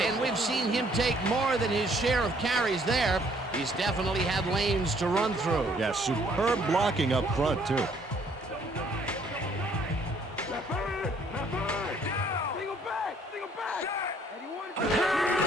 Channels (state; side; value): normal; both; correlation 0.63